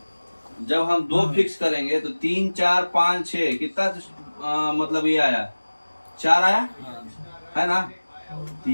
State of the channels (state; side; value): inverted; both; correlation -1.00